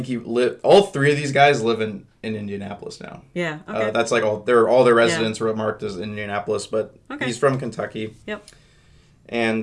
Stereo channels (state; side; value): identical; both; correlation 1.00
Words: think all three of these guys live in Indianapolis now. Yeah. Okay. That's like all their residents were marked as Indianapolis, but Okay. he's from Kentucky. Yep. And